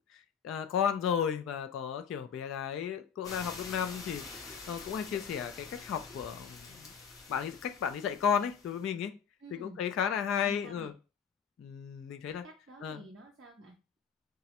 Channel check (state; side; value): quieter; right; 7.5 dB